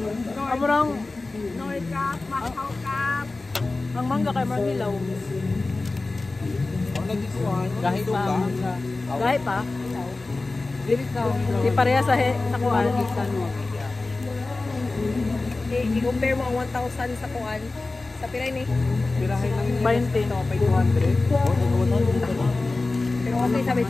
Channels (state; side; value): quieter; right; 3.3 dB